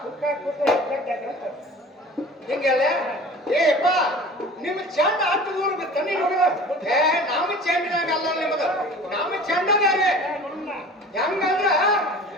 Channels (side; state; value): both; normal; correlation 0.42